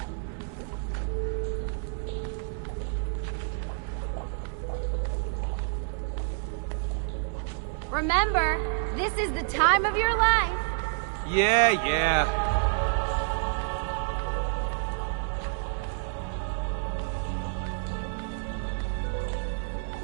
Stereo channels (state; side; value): silent; left; digital silence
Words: Remember, this is the time of your life. Yeah.